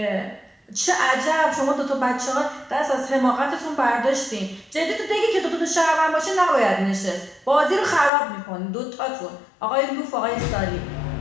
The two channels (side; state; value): right; drops out; at 8.1 s